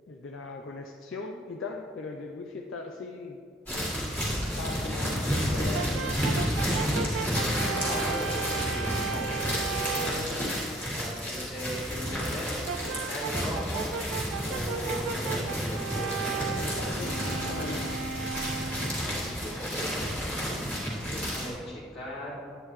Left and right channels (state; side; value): normal; both; correlation 0.55